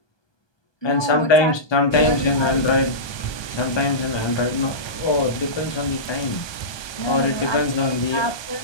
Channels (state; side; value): late; right; 1.2 ms